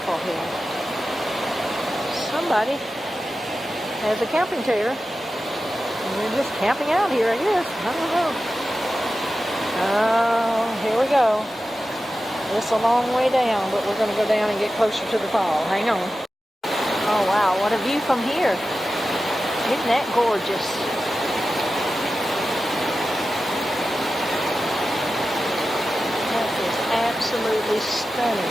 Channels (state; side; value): normal; both; correlation 0.93